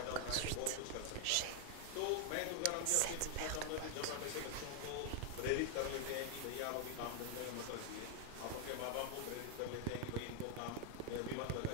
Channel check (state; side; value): different; both; correlation 0.00